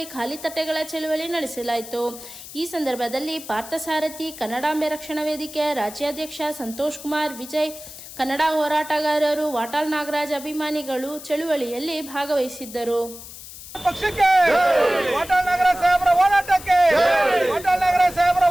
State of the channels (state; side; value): noise; left; hiss, 14 dB below the sound